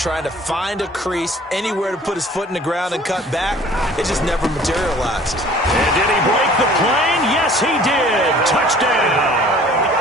to find a crease, anywhere to put his foot in the ground and cut back. It just never materialized. And did he break the plane? Yes, he did. Touchdown.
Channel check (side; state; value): both; normal; correlation 0.51